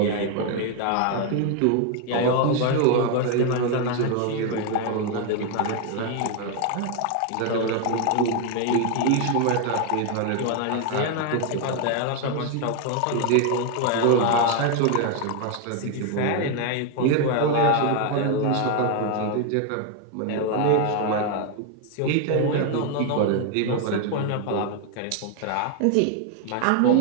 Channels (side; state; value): both; different; correlation 0.01